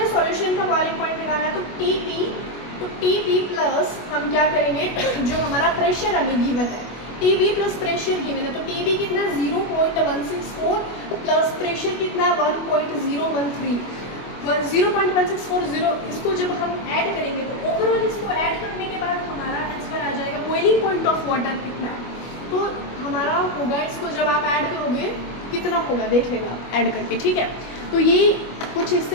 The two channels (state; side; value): late; right; 25 ms